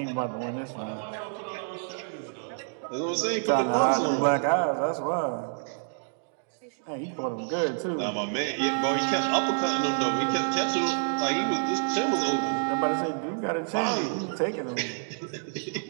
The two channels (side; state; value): left; silent; 59 dB below the other